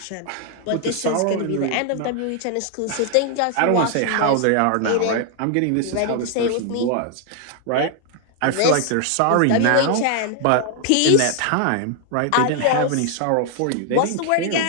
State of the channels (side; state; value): both; different; correlation 0.00